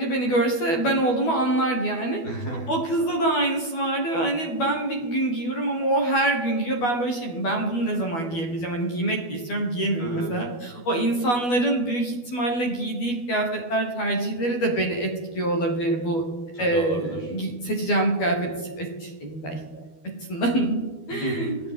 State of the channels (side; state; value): right; late; 12 ms